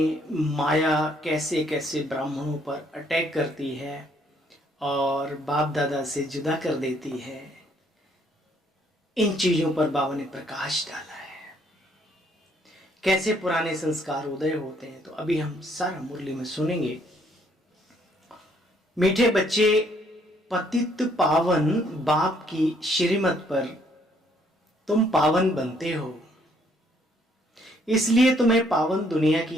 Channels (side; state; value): both; normal; correlation 0.67